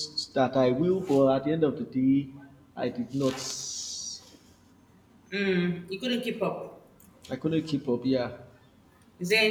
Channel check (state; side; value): identical; both; correlation 1.00